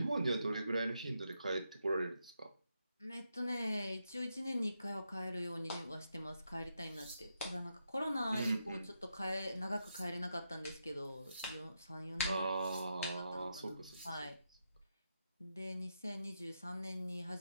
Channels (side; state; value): both; inverted; correlation -0.84